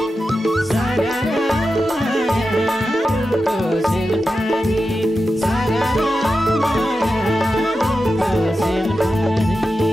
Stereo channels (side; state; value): both; normal; correlation 0.91